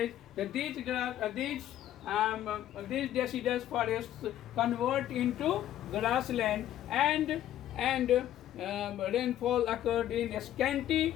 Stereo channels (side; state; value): right; quieter; 12.3 dB